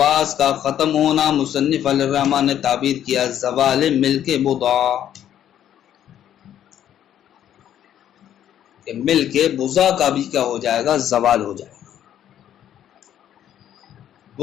کا ختم ہونا مصنف علیہ الرحمہ نے تعبیر کیا زوال ملک بضع، کہ ملک بضع کا بھی کیا ہو جائے گا؟ زوال ہو جائے گا۔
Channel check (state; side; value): quieter; right; 10.7 dB